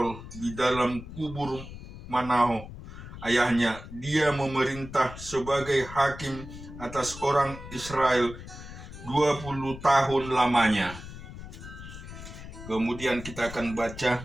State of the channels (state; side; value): noise; left; rumble, 13 dB below the sound